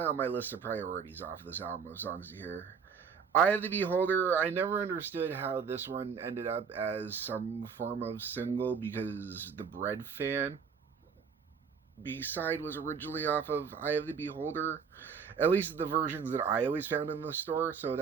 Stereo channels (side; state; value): left; quieter; 6.3 dB